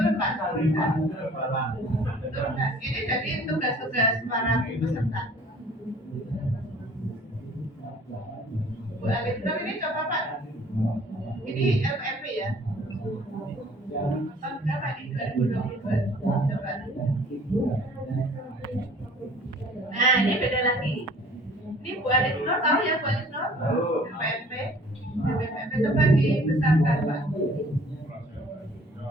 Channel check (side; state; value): both; normal; correlation 0.52